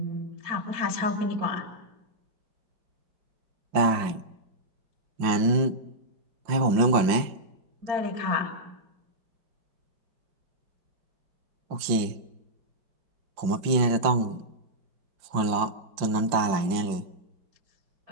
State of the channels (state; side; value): late; left; 5.6 ms